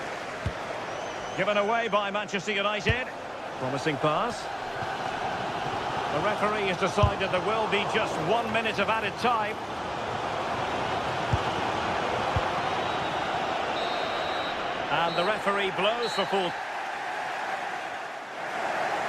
Given away by Manchester United. Promising pass. The referee has decided there will be just 1 minute of added time. And the referee blows for full.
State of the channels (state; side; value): identical; both; correlation 1.00